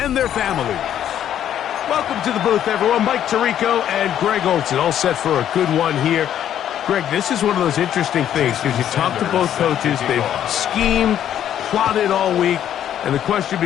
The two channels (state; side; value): quieter; right; 10.5 dB